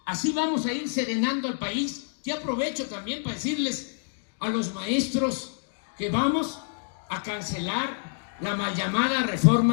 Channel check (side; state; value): right; silent; digital silence